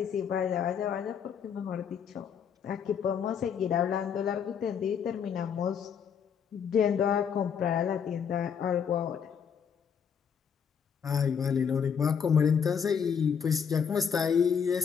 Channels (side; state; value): right; quieter; 7.3 dB